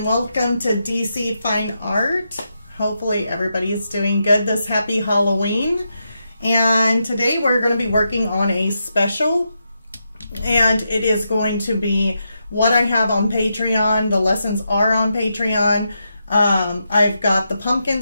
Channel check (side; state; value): both; inverted; correlation -0.84